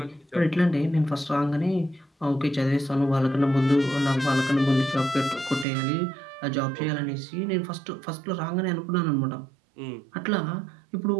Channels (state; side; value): drops out; left; at 5.7 s